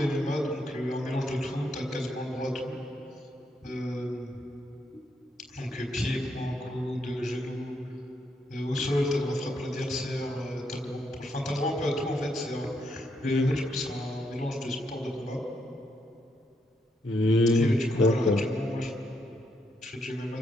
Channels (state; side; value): normal; both; correlation 0.77